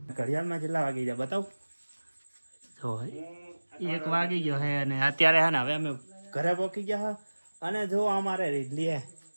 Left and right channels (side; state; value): both; inverted; correlation -1.00